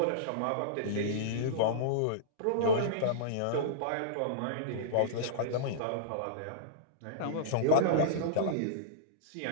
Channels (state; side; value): different; both; correlation -0.03